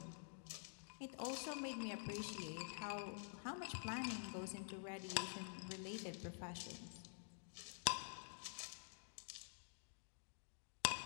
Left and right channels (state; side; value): silent; right; digital silence